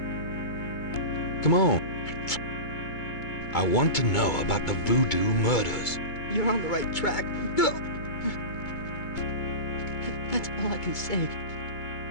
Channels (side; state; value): right; late; 2.2 ms